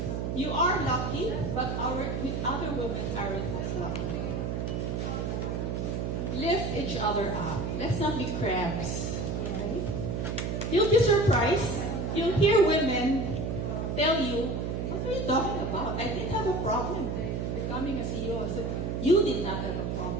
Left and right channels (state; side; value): noise; right; hum, 1 dB below the sound